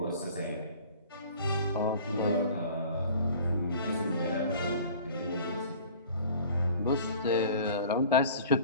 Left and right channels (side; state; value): both; inverted; correlation -0.46